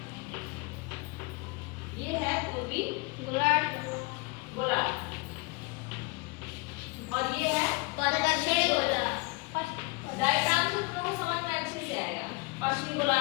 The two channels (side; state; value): right; quieter; 26.3 dB